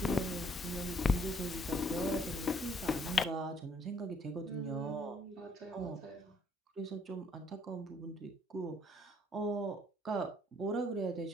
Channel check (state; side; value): normal; both; correlation 0.65